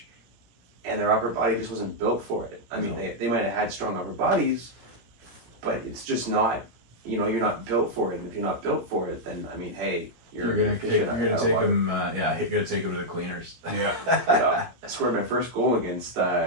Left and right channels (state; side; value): late; left; 17 ms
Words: and their upper body just wasn't built for it. I mean, No. they might have had strong upper bodies, but it's just not. You know, you're not built for it, and if you're not built for it, then I mean, hey, You're gonna take them. Yeah, you're gonna take them to the cleaners. Yeah. I scored my first goal against